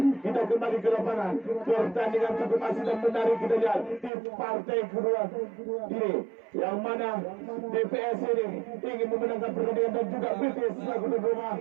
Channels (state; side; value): drops out; left; at 4.1 s